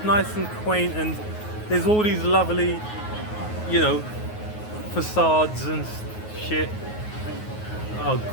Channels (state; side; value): late; right; 9.5 ms